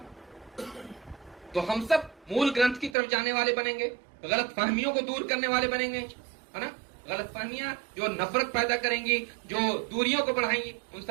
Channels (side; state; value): left; drops out; at 3.0 s